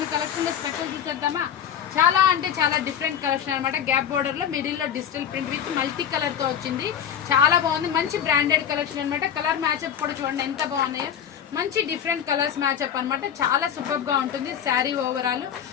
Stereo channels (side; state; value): right; quieter; 9.0 dB